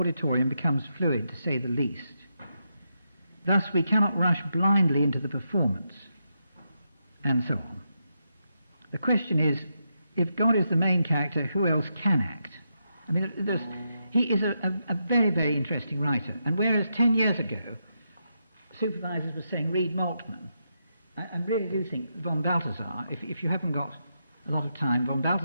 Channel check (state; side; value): inverted; both; correlation -0.83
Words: becomes fluid, to say the least. Thus we cannot rush blindly into the performance, and so on. The question is, if God is the main character, who else can act? He is a very, very interesting writer. And whereas 10 years ago, supervisors were saying, read Moltmann, I really do think von Balthasar, if you haven't got a lot of time, von